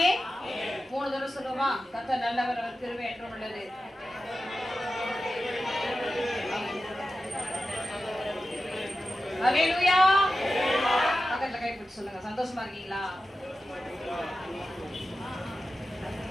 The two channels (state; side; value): normal; both; correlation 0.93